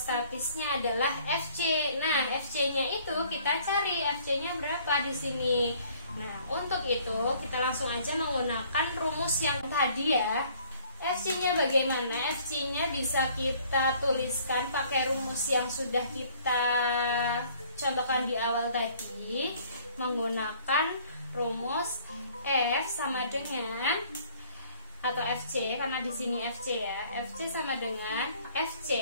adalah FC. Nah, FC-nya itu kita cari FC-nya berapa di sini. Nah, untuk itu kita langsung aja menggunakan rumus yang tadi ya. FC-nya bagaimana? FC-nya bisa kita tuliskan pakai rumus yang sudah kita contohkan di awal tadi, menggunakan rumus F sama dengan atau FC karena di sini FC ya. FC sama dengan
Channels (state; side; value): inverted; both; correlation -0.57